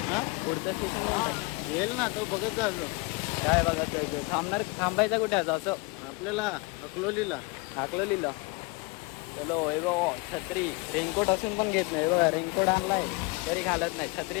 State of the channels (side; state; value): right; quieter; 26.0 dB